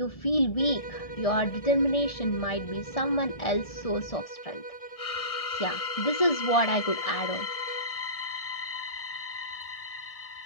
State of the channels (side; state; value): right; late; 1.6 ms